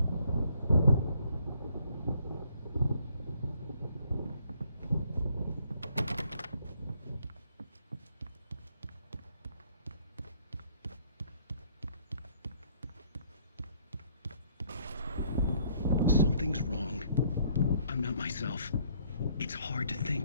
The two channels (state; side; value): inverted; both; correlation -0.65